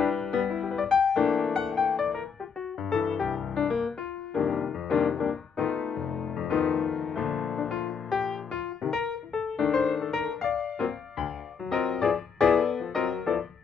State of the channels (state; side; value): quieter; right; 6.2 dB